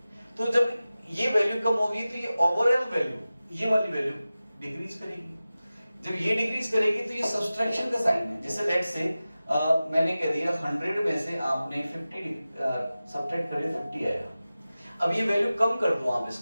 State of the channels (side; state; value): both; inverted; correlation -0.96